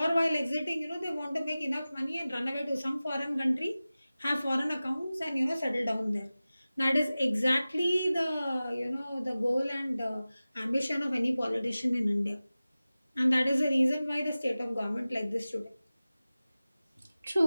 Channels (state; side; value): inverted; both; correlation -0.97